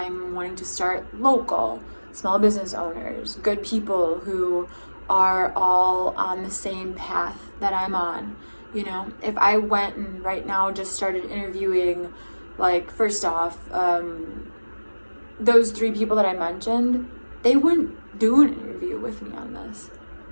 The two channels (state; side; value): inverted; both; correlation -1.00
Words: wanting to start local, small business owners, good people who are all on the same path that I'm on. You know, if I went and right now just started interviewing, like, first off, those 3 people that I mentioned, they wouldn't do an interview with me on this.